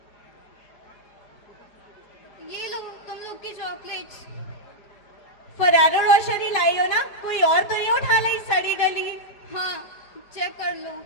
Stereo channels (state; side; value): late; right; 4.9 ms